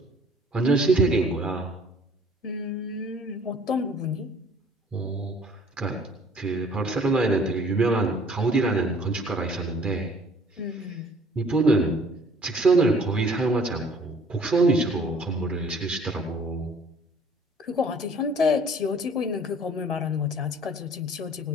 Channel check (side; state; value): both; normal; correlation 0.54